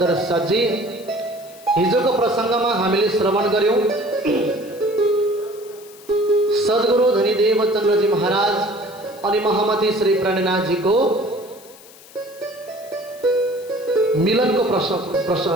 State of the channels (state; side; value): noise; left; hiss, 22 dB below the sound